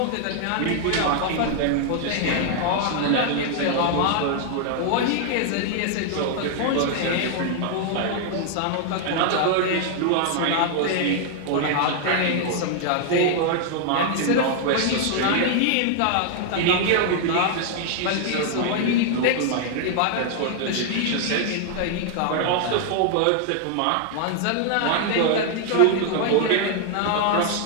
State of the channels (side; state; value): both; different; correlation 0.00